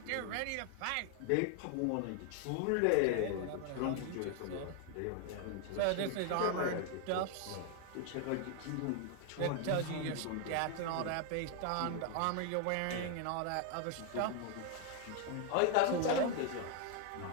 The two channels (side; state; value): both; different; correlation 0.00